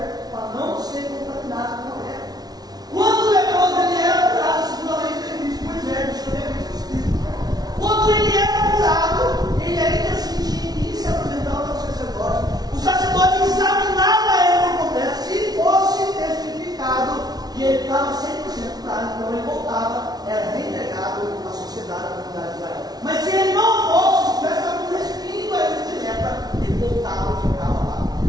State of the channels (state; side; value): late; left; 0.19 ms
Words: para não ser contaminado com a mulher. Quando o leproso ele era curado, segundo a lei de Cristo, por exemplo, deixa eu ver aqui o Espírito. Quando ele era curado, ele ainda sentia e se apresentava ao sacerdote. O sacerdote examinava ele por completo. Se fosse testificado que ele estava 100% curado, então ele voltava, era reintegrado à sociedade, à comunidade de Israel. Mas se ele não fosse, se tivesse algum respingo a ele direta, ele voltava e ficava lá,